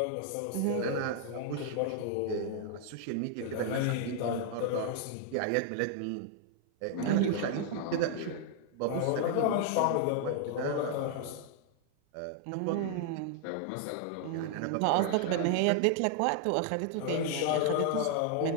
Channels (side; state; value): both; different; correlation 0.00